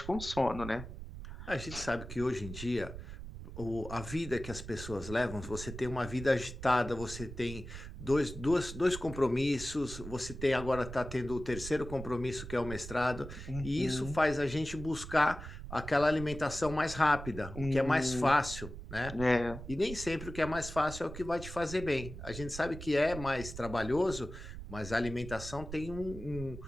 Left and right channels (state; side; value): noise; right; rumble, 10 dB below the sound